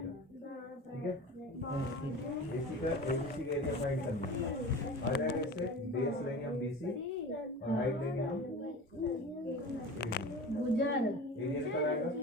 ठीक है। AC का ABC का एरिया फाइंड करना है, आ जाएगा इससे बेस लेंगे हम BC और हाइट लेंगे हम गुजर एरिया निकल आएगा।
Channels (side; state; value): both; normal; correlation 0.34